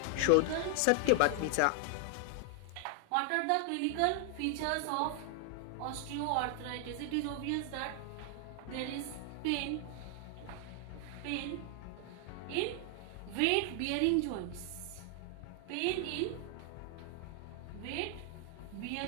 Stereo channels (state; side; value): different; both; correlation 0.00